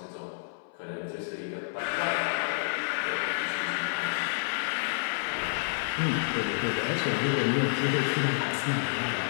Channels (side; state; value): right; silent; 58 dB below the other